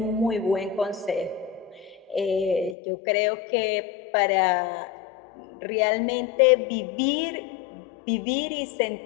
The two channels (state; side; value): drops out; right; at 2.8 s